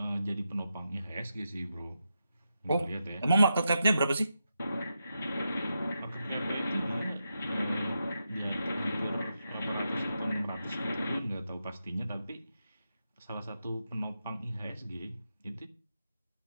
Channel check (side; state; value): both; inverted; correlation -0.87